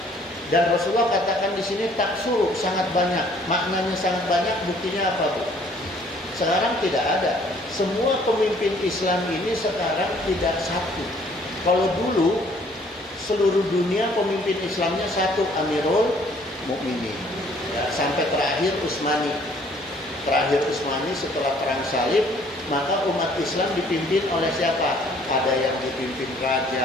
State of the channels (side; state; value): both; normal; correlation 0.59